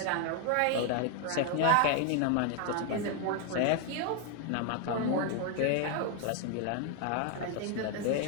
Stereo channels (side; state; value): both; different; correlation 0.01